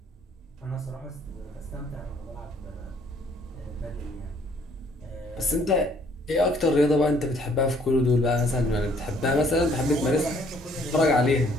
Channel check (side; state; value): both; normal; correlation 0.62